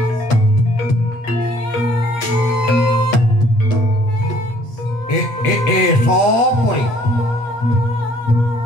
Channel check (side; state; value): right; late; 8.6 ms